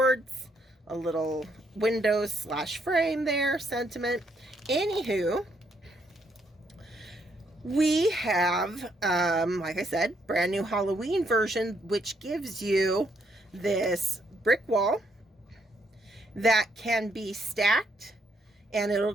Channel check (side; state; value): both; normal; correlation 0.73